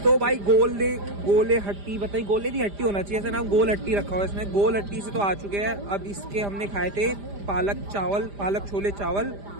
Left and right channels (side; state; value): left; late; 5.0 ms